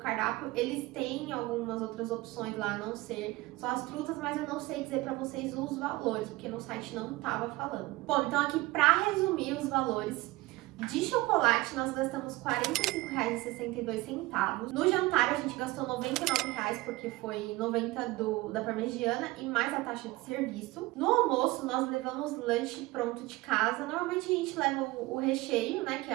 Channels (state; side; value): quieter; left; 20.2 dB